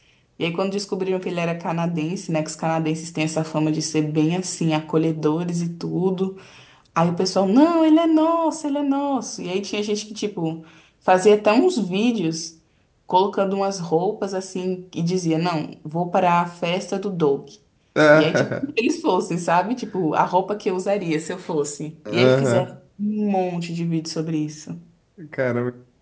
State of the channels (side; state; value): both; identical; correlation 1.00